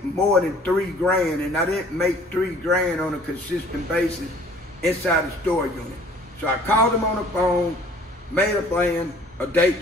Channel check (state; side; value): normal; both; correlation 0.53